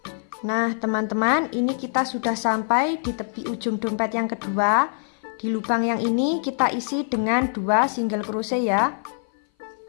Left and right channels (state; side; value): silent; right; 58 dB below the other